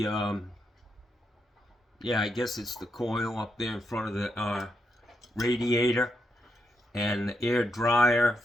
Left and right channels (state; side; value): normal; both; correlation 0.82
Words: yeah, I guess it's the coil up there in front of the radiator, and the air dryer,